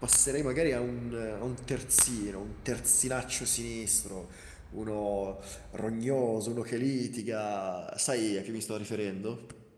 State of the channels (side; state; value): both; identical; correlation 1.00